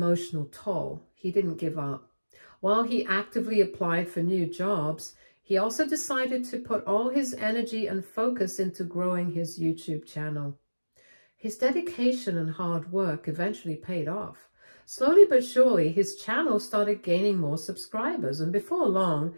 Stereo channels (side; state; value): both; inverted; correlation -1.00